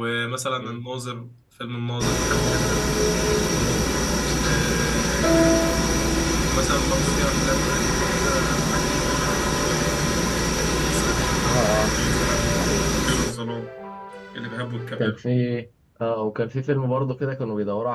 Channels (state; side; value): identical; both; correlation 1.00